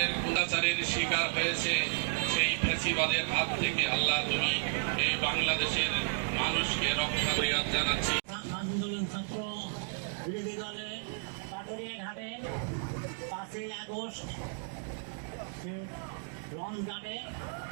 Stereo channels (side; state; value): left; silent; digital silence